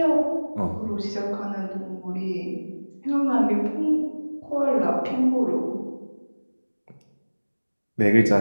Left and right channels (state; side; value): inverted; both; correlation -1.00